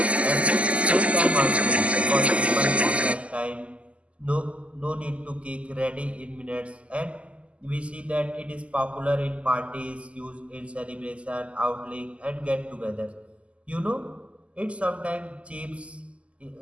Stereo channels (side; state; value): left; late; 0.061 ms